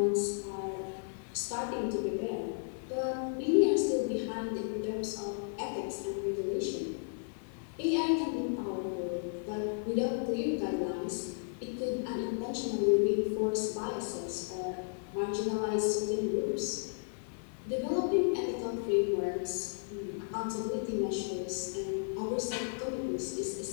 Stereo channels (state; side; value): silent; right; digital silence